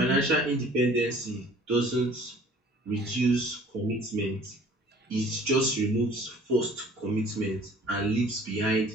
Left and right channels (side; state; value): both; normal; correlation 0.51